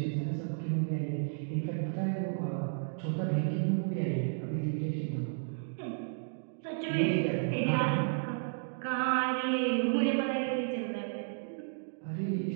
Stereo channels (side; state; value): left; silent; digital silence